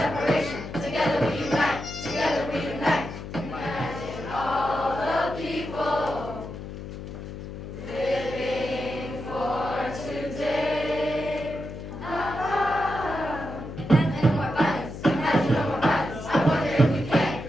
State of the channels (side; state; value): left; noise; hum, 10 dB below the sound